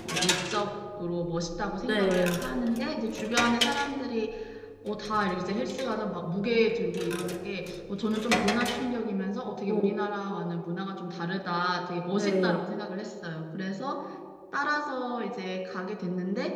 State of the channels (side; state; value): both; identical; correlation 1.00